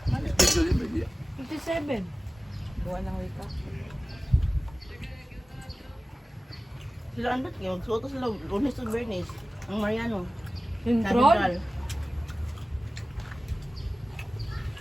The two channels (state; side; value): normal; both; correlation 0.97